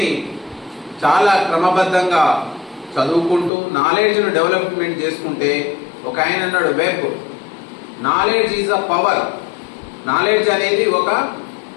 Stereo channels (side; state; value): right; drops out; at 3.5 s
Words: చాలా క్రమబద్ధంగా చదువుకుంటూ నాలెడ్జ్ను డెవలప్మెంట్ చేసుకుంటే, ఒక ఆయన అన్నాడు web, knowledge is a power. Knowledge అనేది ఒక